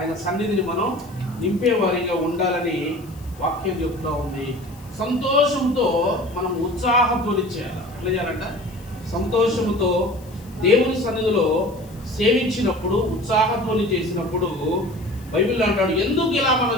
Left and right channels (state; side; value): noise; left; hiss, 25 dB below the sound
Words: సన్నిధిని మనం నింపేవారిగా ఉండాలని వాక్యం చెప్తూ ఉంది. సంతోషంతో మనం ఉత్సాహధ్వని చేయాలి. ఎట్లా చేయాలంట? సంతోషంతో దేవుని సన్నిధిలో సేవించినప్పుడు, ఉత్సాహధ్వని చేసినప్పుడు బైబిల్ అంటాడు, ఎందుకు ఇలా మనం